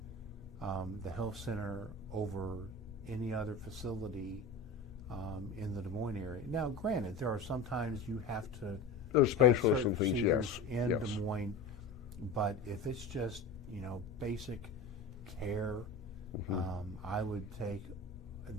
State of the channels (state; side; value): quieter; right; 3.4 dB